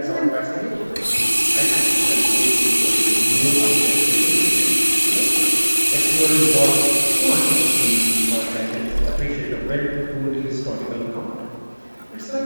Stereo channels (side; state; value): both; inverted; correlation -1.00